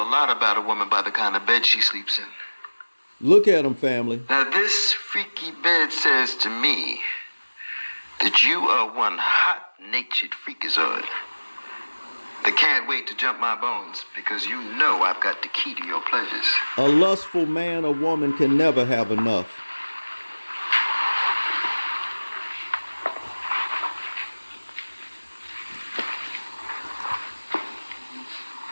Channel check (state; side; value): inverted; both; correlation -1.00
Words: lot about a woman by the kind of bed she sleeps in. Look at him, family. Now, this freaky bed says to me that you are one hot-natured freakazoid that can't wait to jump my bones because you know I've got the key to your pleasures. A lustful man or woman can never have enough.